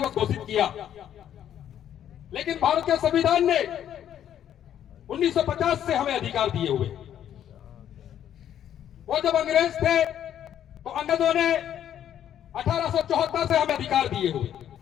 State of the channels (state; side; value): quieter; right; 10.3 dB